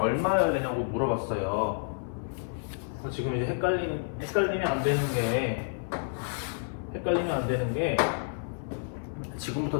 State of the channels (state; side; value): silent; right; 58 dB below the other